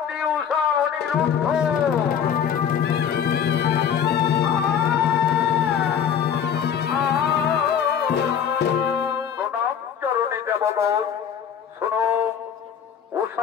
উষা অনিরুদ্ধ? শোনো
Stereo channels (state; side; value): quieter; right; 8.2 dB